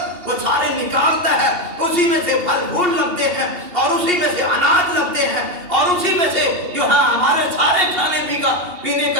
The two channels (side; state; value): left; late; 2.8 ms